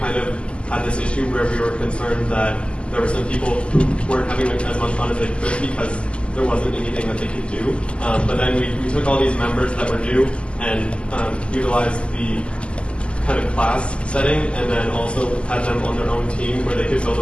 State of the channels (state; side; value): late; right; 0.054 ms